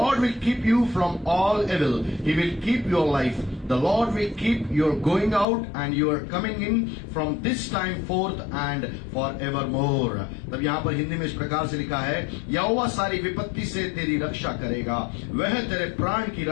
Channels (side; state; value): right; drops out; at 5.5 s